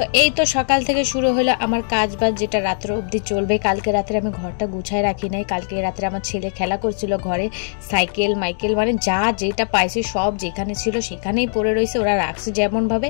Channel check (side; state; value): right; silent; digital silence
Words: এই তো সকাল থেকে শুরু হলো আমার কাজ বাজ, যেটা রাত্র অবধি চলবে। কালকে রাত্রে আমি ঘরটা গুছায় রাখি নাই। কালকে রাত্রে আমার ছেলে খেলা করছিল ঘরে, সাইকেল মাইকেল মানে যা যেটা পাইছে সব যেখানে ছিল সেখানেই পড়ে রয়েছে। ওরা রাখছে যেমনভাবে,